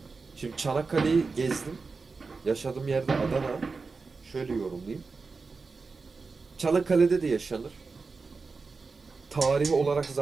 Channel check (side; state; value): left; quieter; 4.4 dB